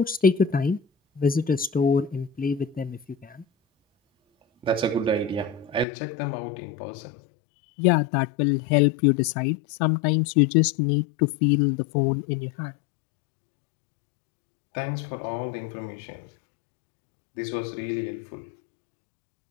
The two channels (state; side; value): drops out; right; at 5.9 s